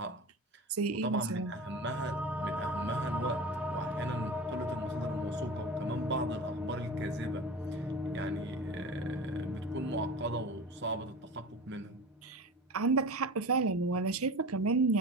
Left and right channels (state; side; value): normal; both; correlation 0.33